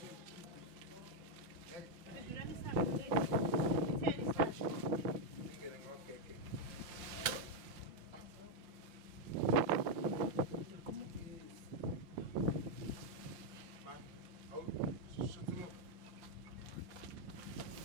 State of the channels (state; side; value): late; left; 5.5 ms